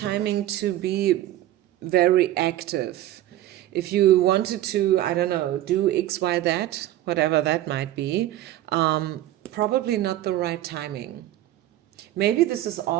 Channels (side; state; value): left; quieter; 14.1 dB